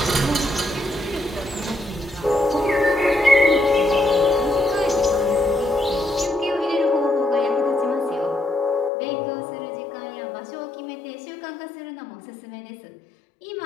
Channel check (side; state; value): right; drops out; at 8.9 s